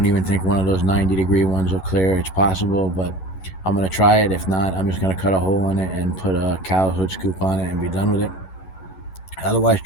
even think one of those 90-degree ones will clear. It's possible, but I'm going to try it. If not, I'm just going to cut a hole in it and put a cowl hood scoop on it and be done with it. Otherwise,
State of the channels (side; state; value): right; late; 11 ms